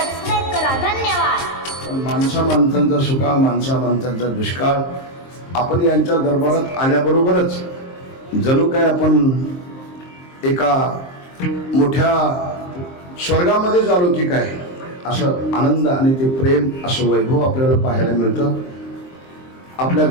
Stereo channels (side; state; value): right; late; 23 ms